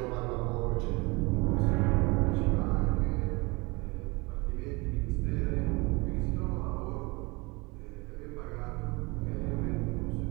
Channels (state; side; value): quieter; left; 25.8 dB